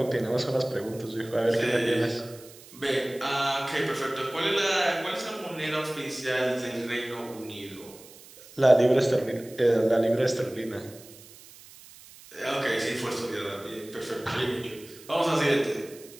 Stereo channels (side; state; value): right; noise; hiss, 20 dB below the sound